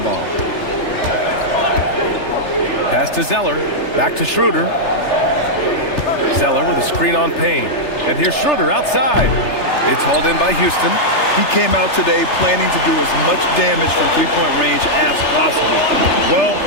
Pass to Zeller. Back to Schroeder. Zeller with a screen on Payne. And here's Schroeder outside. It's hauled in by Houston. He came out today planning to do as much damage from three-point range as possible. Well,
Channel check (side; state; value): right; late; 3.3 ms